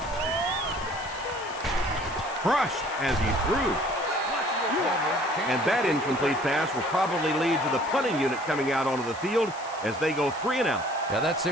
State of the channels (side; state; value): left; noise; hiss, 18 dB below the sound